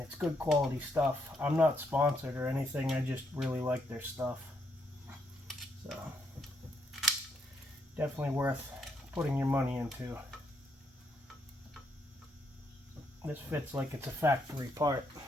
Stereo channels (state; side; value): normal; both; correlation 0.75